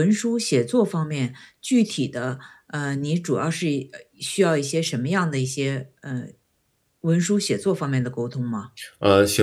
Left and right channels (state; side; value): identical; both; correlation 1.00